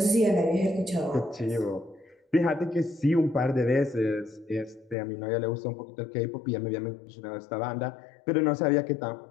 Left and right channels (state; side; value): drops out; right; at 5.0 s